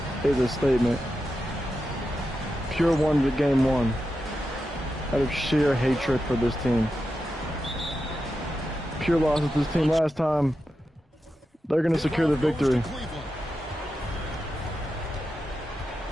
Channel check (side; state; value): both; normal; correlation 0.89